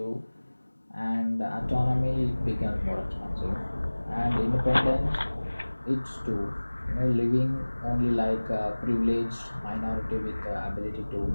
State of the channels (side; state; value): both; inverted; correlation -1.00